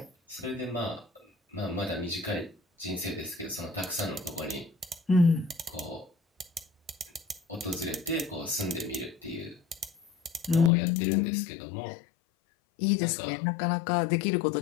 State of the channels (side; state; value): right; drops out; at 10.7 s